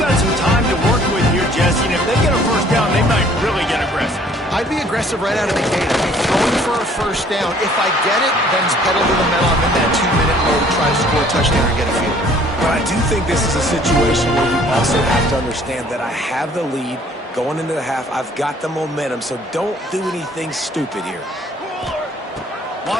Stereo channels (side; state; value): both; normal; correlation 0.57